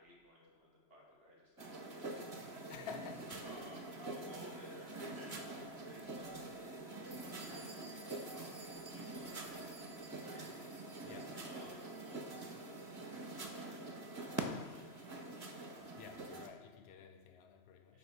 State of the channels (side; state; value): right; late; 3.0 ms